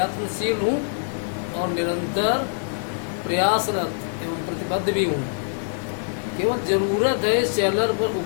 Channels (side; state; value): right; silent; 63 dB below the other